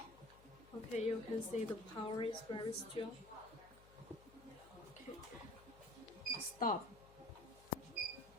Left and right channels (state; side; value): noise; left; hum, 21 dB below the sound